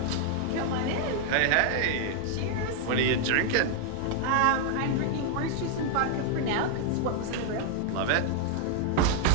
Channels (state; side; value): different; both; correlation 0.00